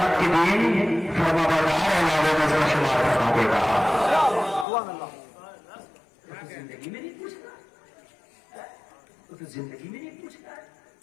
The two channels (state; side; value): drops out; right; at 4.7 s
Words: کے دن فرما بردار علاوہ نظر شمار فرما دے گا۔ تو زندگی میں نہیں پوچھ رہا، تو زندگی میں نہیں پوچھ رہا ہے۔